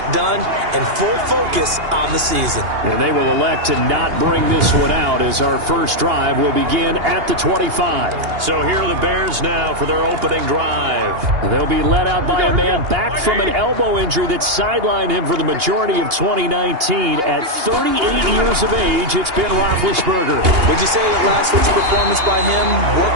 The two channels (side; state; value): left; late; 2.8 ms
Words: done and full focus on the season. And they will elect to not bring this one out as our first drive will begin at the 25. So here are the Bears now for their opening drive. They'll be led out by a man back from an elbow injury that sidelined him for the majority of 2019. At 38 years of age, it's Ben Roethlisberger. Would you say that last week's performance by him,